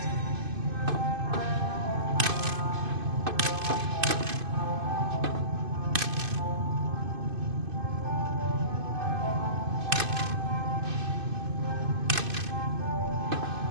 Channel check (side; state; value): left; late; 2.5 ms